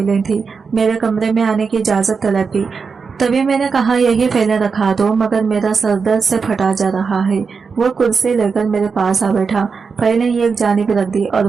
थी। मेरे कमरे में आने की इजाजत तलब की। तभी मैंने कहा, यही फाइलें रखा दो, मगर मेरा सर दर्द से फटा जा रहा है। वो कुर्सी लेकर मेरे पास आ बैठा, फाइलें एक जानिब रख दी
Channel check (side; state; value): left; quieter; 5.3 dB